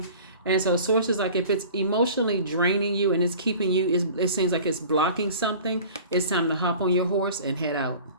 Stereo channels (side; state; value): both; inverted; correlation -0.43